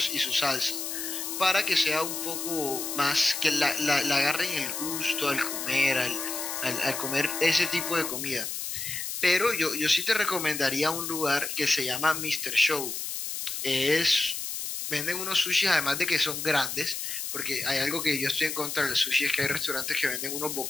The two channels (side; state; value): left; noise; hiss, 5 dB below the sound